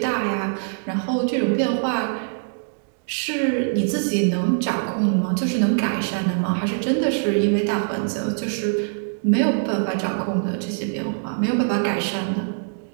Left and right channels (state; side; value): silent; left; digital silence